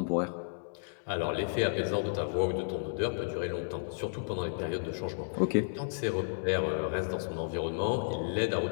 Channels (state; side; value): silent; right; digital silence